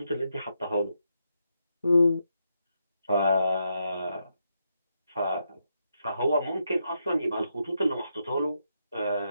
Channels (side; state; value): both; inverted; correlation -0.82